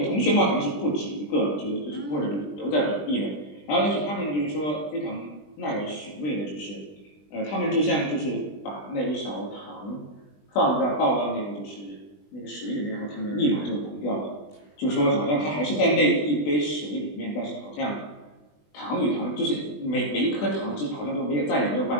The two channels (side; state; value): right; late; 20 ms